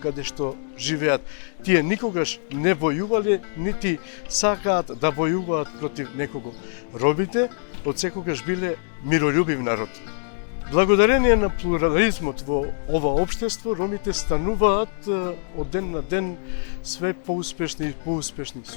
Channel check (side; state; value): right; silent; digital silence